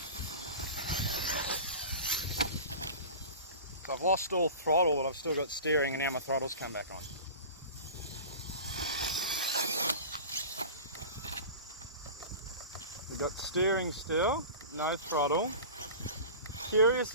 So I've lost all throttle, but I've still got steering, and now my throttle's come back on. We've got steering still, no throttle.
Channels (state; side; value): inverted; both; correlation -0.35